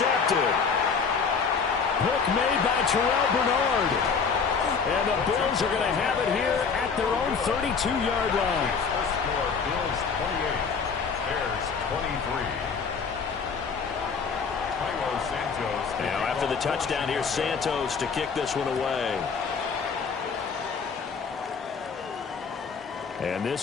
Hook made by Terrell Bernard. And the Bills are going to have it here at their own 32-yard line. The score, Bills 28, Bears 23. Now after the touchdown, here's Santos to kick this one away. And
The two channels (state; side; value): quieter; right; 5.6 dB